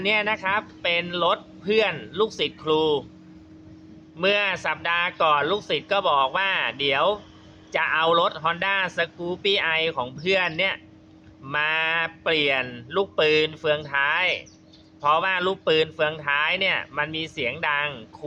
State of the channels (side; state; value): both; identical; correlation 1.00